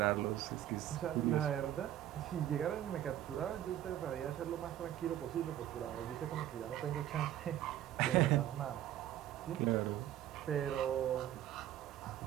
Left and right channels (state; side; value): quieter; left; 12.3 dB